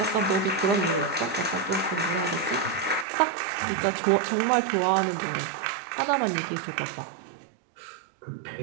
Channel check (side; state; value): left; drops out; at 3.1 s